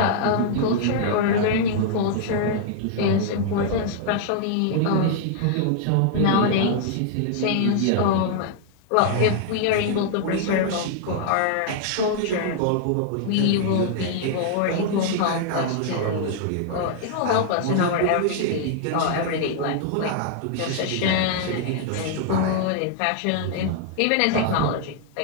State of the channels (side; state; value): both; different; correlation -0.01